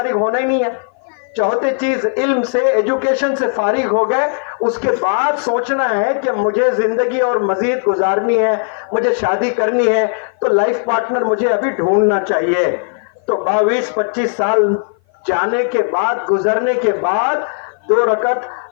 ہونا ہی نہیں ہے، چوتھی چیز علم سے، ایجوکیشن سے فارغ ہو گئے، اس کے بعد سوچنا ہے کہ مجھے زندگی اور مزید گزارنی ہے، مجھے شادی کرنی ہے، تو لائف پارٹنر مجھے ابھی ڈھونڈنا چاہیے۔ تو 22-25 سال جانے کے بعد، گزرنے کے بعد 2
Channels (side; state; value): right; silent; 56 dB below the other